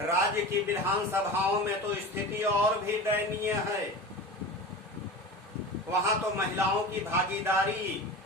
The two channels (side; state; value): both; normal; correlation 0.31